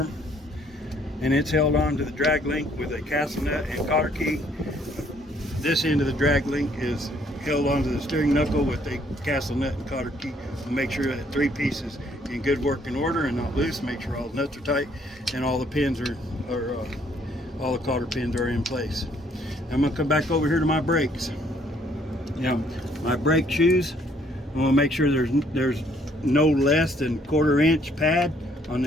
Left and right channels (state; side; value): normal; both; correlation 0.65